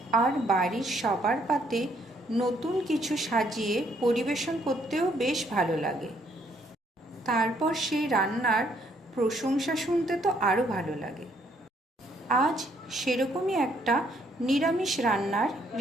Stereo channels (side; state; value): both; normal; correlation 0.68